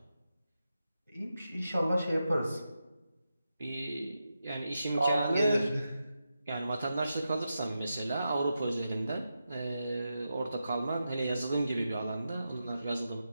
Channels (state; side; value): inverted; both; correlation -0.88